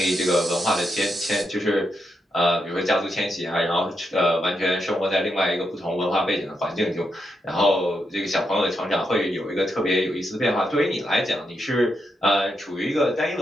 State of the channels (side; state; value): both; normal; correlation 0.83